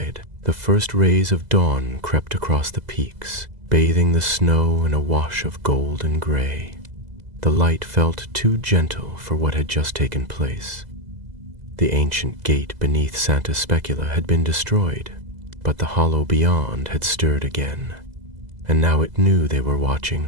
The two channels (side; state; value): left; late; 2.0 ms